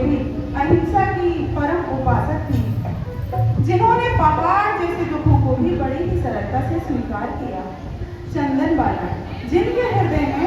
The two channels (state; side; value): identical; both; correlation 1.00